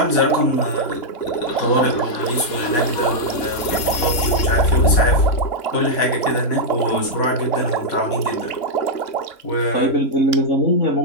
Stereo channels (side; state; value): right; late; 3.6 ms